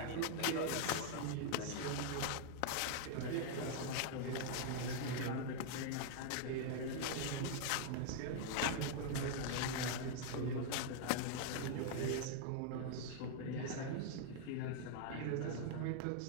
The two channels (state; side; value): different; both; correlation 0.00